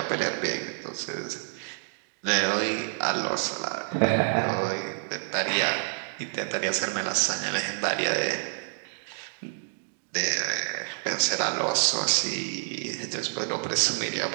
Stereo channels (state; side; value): silent; left; digital silence